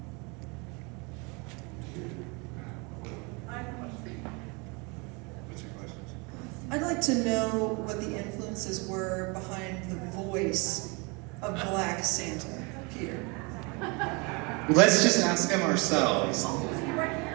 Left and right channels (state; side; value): quieter; left; 29.7 dB